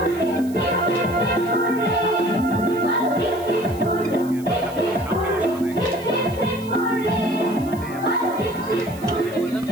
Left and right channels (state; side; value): noise; right; hiss, 21 dB below the sound